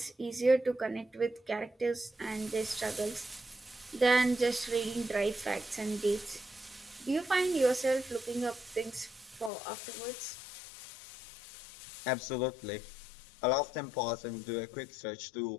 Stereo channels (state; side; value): drops out; right; at 9.5 s